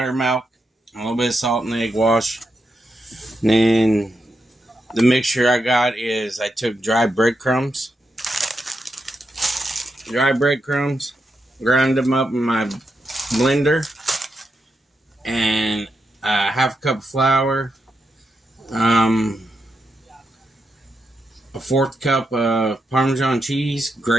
a little bit of salt and egg wash. And then the mixture I got is I took dry breadcrumbs, ground them up in my blender, and half a cup of flour, a 1/4 cup of Parmesan cheese,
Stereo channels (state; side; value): normal; both; correlation 0.85